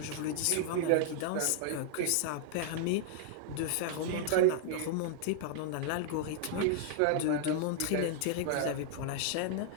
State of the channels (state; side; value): different; both; correlation -0.01